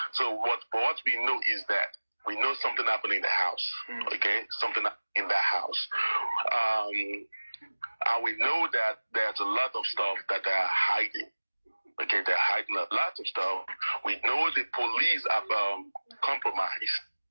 So what we know is that we know something happened in the house. Okay, something in the house. And we know that there's a lot of stuff that they are hiding. Okay, they're hiding a lot of stuff. We know the police have compromised.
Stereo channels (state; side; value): inverted; both; correlation -1.00